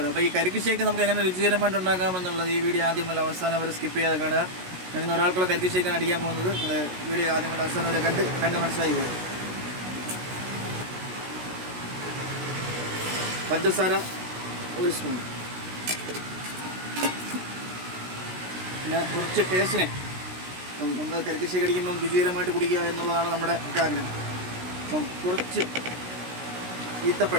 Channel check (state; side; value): late; left; 16 ms